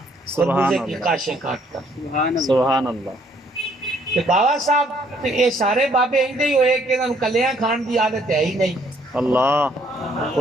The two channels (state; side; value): normal; both; correlation 0.65